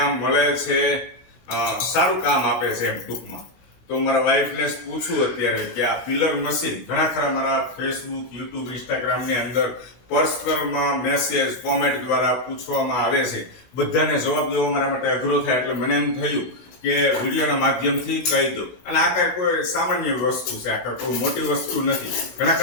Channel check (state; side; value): late; right; 16 ms